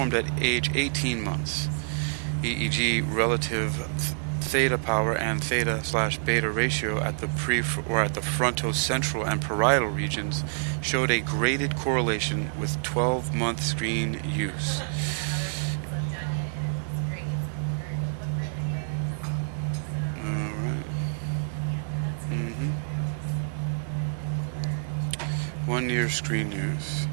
at age 18 months. EEG relative theta power and theta/beta ratio at the fronto-central and parietal regions showed a graded correlation with 12-month screen use. Alright. 1 year screen use.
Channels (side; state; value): left; silent; digital silence